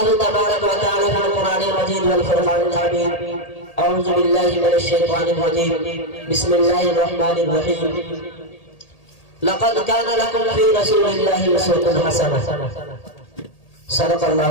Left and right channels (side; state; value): right; late; 1.8 ms